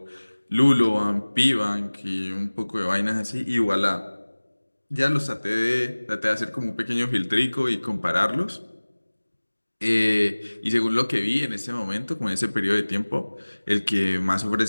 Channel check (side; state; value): both; inverted; correlation -1.00